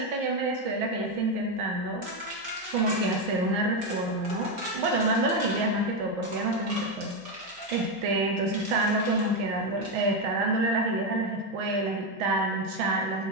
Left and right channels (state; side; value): late; left; 5.1 ms